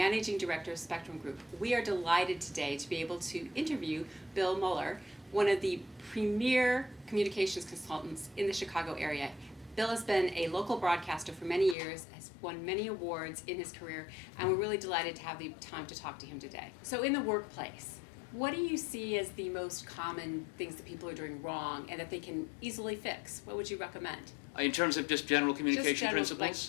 Director of Spectrum Group. We are delighted today to be able to interview Bill Moller, one of the premier communications consultants in the Chicago area. Bill has been a local broadcaster for many years, has won many awards in his career, and we're really delighted to have the time to talk to him today. So in the workplace, what do you see as the most common things that people are doing wrong and that they can easily fix? What would you recommend? In terms of just general communication Just general,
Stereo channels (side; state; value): right; drops out; at 11.8 s